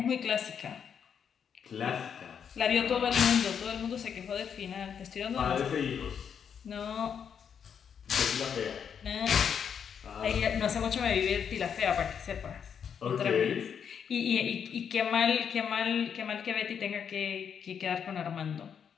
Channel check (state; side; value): quieter; right; 7.5 dB